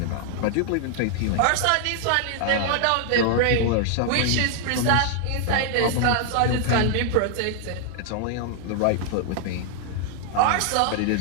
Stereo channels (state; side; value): different; both; correlation 0.00